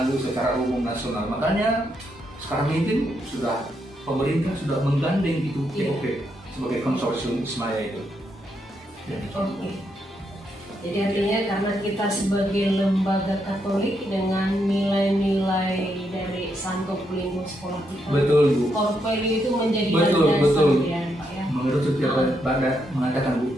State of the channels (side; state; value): both; normal; correlation 0.79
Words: secara umum nasional. Makanya sekarang ini sudah pemerintah sudah menggandeng itu POP sebagai konsorsium Ismaya itu. Jadi artinya karena kita sebagai lembaga Katolik dengan nilai-nilai dari Santo Pelindung sekolah kita, betul Bu. Core value itu menjadi betul. Ya, Pak, ya. Menurut setiap Bapak mengatakan Bu,